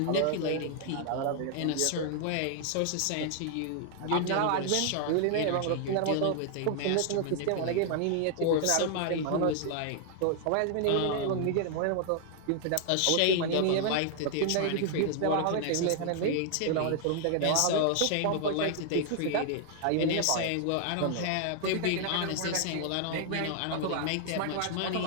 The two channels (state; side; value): different; both; correlation 0.00